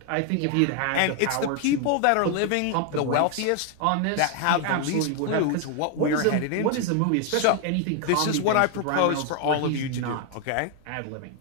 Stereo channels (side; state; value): both; different; correlation 0.00